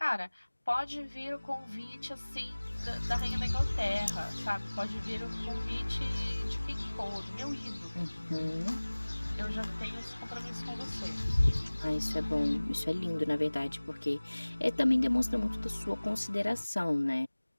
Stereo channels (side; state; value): both; inverted; correlation -1.00